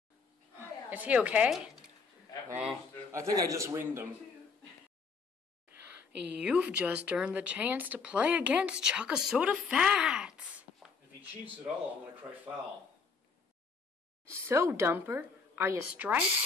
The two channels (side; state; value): right; quieter; 5.1 dB